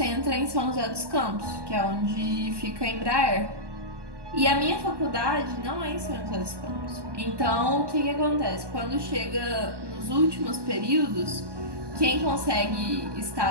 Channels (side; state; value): left; late; 1.2 ms